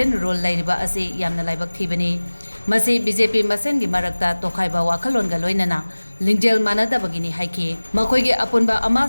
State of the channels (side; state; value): both; inverted; correlation -1.00